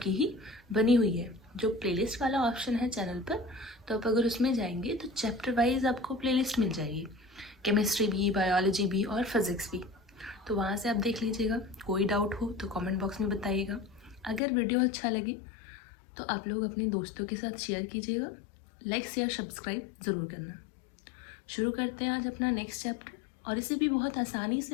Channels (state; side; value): drops out; right; at 14.4 s